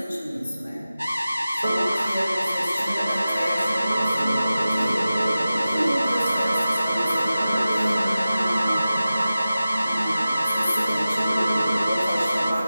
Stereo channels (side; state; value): both; inverted; correlation -0.94